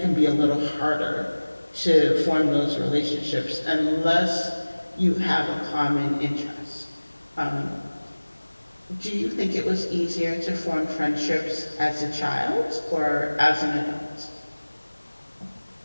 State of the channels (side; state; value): both; inverted; correlation -1.00